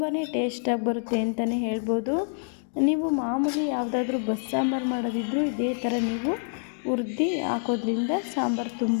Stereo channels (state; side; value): silent; right; digital silence